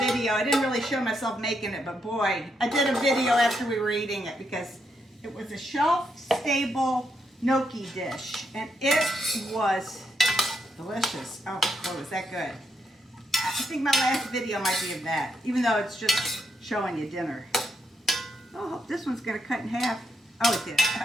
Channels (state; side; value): normal; both; correlation 0.79